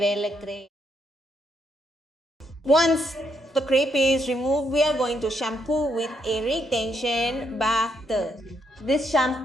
Once the crepe is removed, we are going to shampoo with a retention bath. This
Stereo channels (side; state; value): both; normal; correlation 0.76